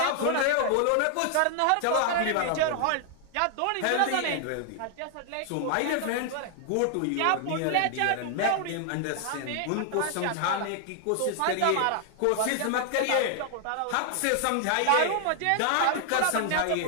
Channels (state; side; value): different; both; correlation 0.00